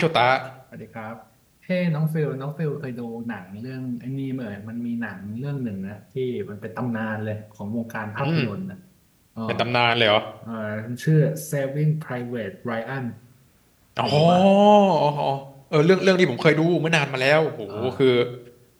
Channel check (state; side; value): identical; both; correlation 1.00